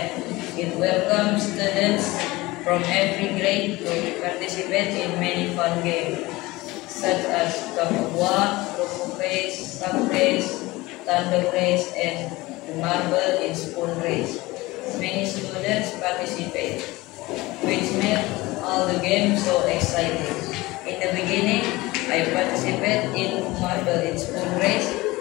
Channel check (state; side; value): quieter; right; 20.5 dB